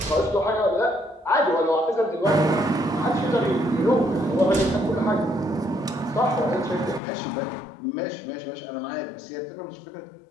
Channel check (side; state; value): right; drops out; at 7.0 s